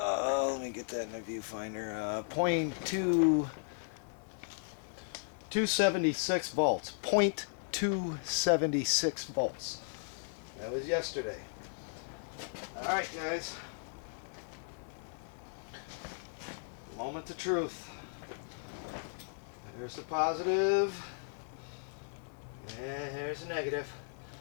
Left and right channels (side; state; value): right; silent; digital silence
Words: Let me get that in the viewfinder. 276 volts. 0.276 volts. That was yesterday. Alright, guys. Moment of truth. There's the positive. And here's the negative.